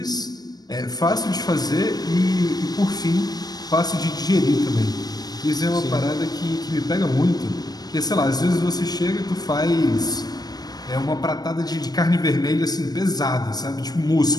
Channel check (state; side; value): late; right; 0.19 ms